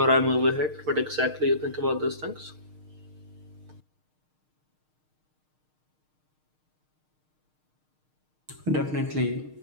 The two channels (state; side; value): late; left; 6.5 ms